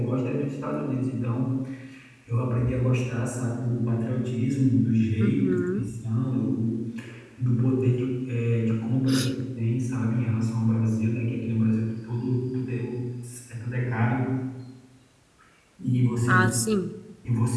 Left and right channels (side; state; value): both; identical; correlation 1.00